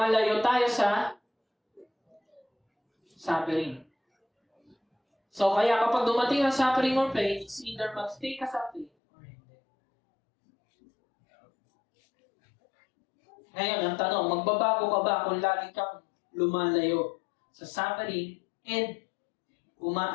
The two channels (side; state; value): right; drops out; at 8.9 s